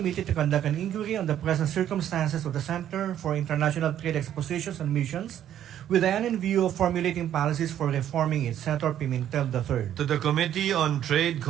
to conduct an inquiry on the present circumstances of the Center for International Trade Expositions and Missions, with the end in view of formulating policies for reforming it. Senator Pimentel III. To the Committee on Trade,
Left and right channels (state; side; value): quieter; left; 10.9 dB